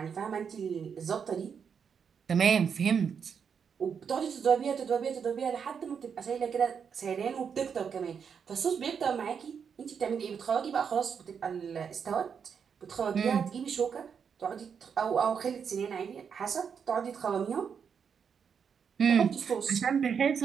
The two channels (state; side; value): quieter; left; 6.8 dB